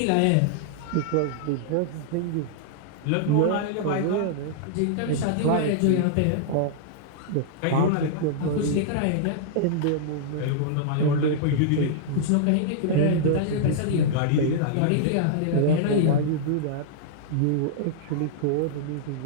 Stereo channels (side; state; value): both; different; correlation -0.02